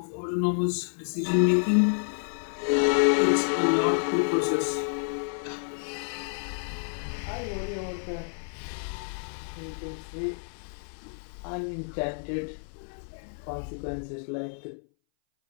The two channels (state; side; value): silent; right; 59 dB below the other